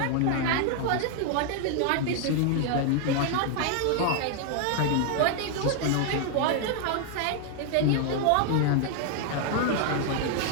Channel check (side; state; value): both; different; correlation 0.00